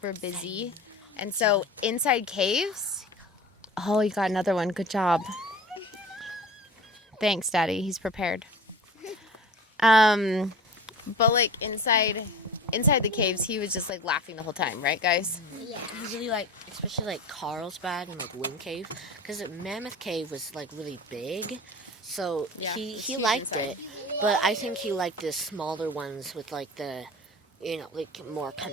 busy. And so inside caves, oh, you got another one. Good job. Thanks, Daddy. He's prepared. But inside the caves, he was just laughing the whole time, right, guys? Yeah. Usually especially Carlsbad and Wind Cave, because Mammoth Cave was really big, so Yeah, he it's liked huge it. But I think he liked the smaller ones with the more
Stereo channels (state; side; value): normal; both; correlation 0.37